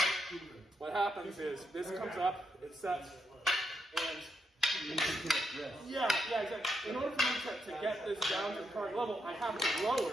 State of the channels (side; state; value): both; normal; correlation 0.81